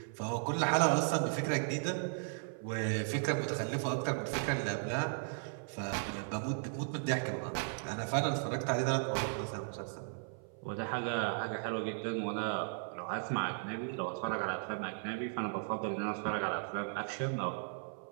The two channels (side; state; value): left; silent; 54 dB below the other